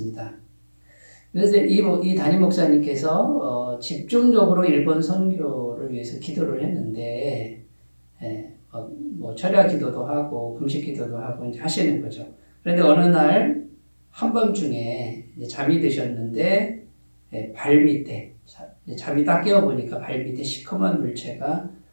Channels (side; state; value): both; inverted; correlation -1.00